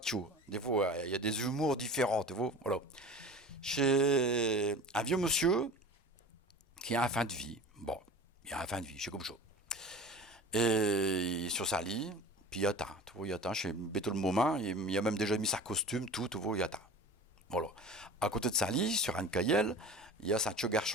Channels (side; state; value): both; normal; correlation 0.37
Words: Des fois, il y a des humours différents, tu vois. Voilà. Chez un vieux monsieur qui a un fin de vie. Bon, il a un fin de vie, c'est comme ça. Et il est sur sa lit, puis il attend. Tu vois, il attend chez Béto le moment. Il a même déjà mis sa costume, tout, tu vois, il attend. Voilà. À côté de sa lit, sur un cahier, il y a sa petit